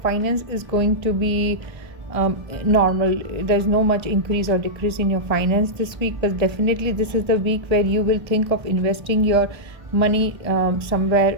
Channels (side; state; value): left; late; 1.7 ms